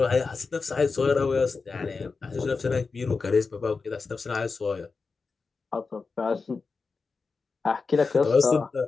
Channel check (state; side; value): quieter; right; 4.5 dB